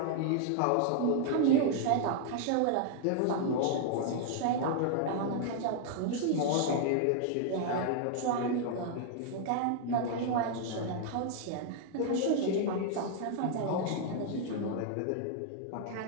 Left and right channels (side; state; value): both; different; correlation -0.01